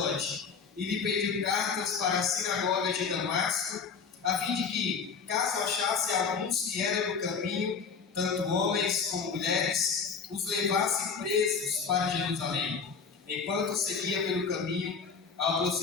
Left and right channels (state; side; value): quieter; right; 5.7 dB